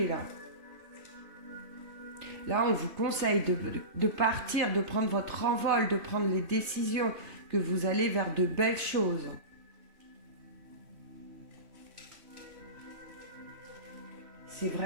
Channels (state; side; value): late; left; 3.1 ms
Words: là. Là, on vous conseille de partir, de prendre votre envol, de prendre les décisions, que vous allez vers de belles choses. C'est